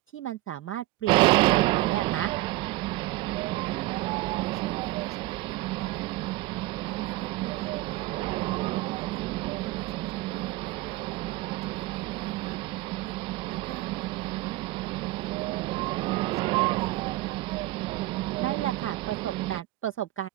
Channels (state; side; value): quieter; left; 18.1 dB